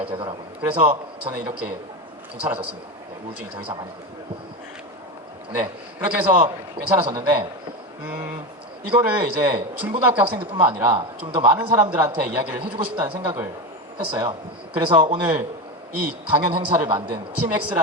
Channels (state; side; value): normal; both; correlation 0.18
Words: 되더라고요. 그래서 저는 이렇게 괜찮아졌습니다. 네, 우울증이 더 이상 안 있고요. 네, 그렇게 해서 괜찮아졌는데 이거를 이제 중고등학교 학생들뿐만 아니라 좀 더 많은 사람들한테 이야기를 해주고 싶다는 생각을 했어요. 그래서 오늘 이 강연 행사를 만든